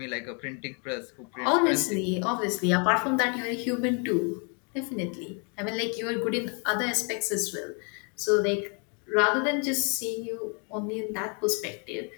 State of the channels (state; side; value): quieter; right; 37.5 dB